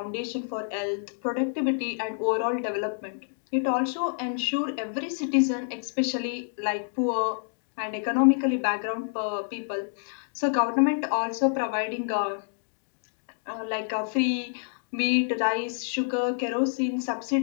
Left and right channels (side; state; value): right; silent; digital silence